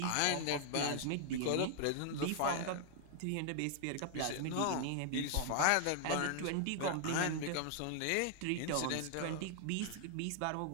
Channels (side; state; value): both; different; correlation 0.00